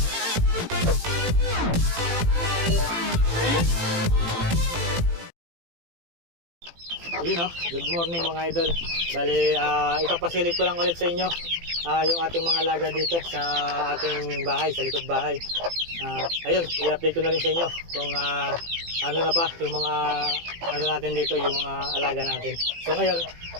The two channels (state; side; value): late; left; 18 ms